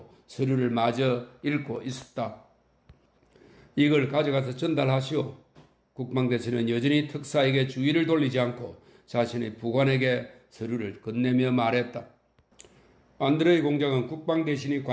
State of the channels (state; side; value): identical; both; correlation 1.00